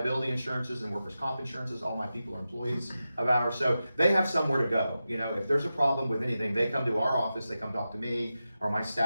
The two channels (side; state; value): both; inverted; correlation -0.92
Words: insurances and workers' comp insurances. All my people are employees of ours, so they have somewhere to go. If there's a problem with anything, they come to our office, they come talk to me or my